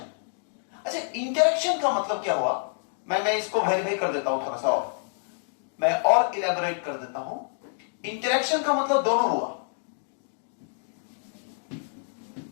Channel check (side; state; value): right; silent; digital silence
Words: अच्छा इंटरेक्शन का मतलब क्या हुआ, मैं इसको वेरीफाई कर देता हूं थोड़ा सा, और मैं और इलेबोरेट कर देता हूं। इंटरेक्शन का मतलब दोनों हुआ,